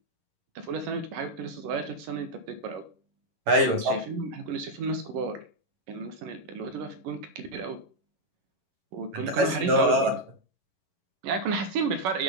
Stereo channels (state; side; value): late; left; 11 ms